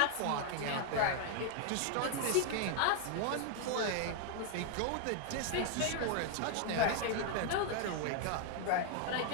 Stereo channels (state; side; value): different; both; correlation 0.00